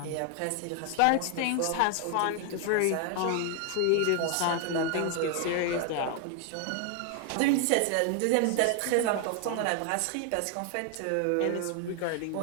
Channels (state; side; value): different; both; correlation 0.00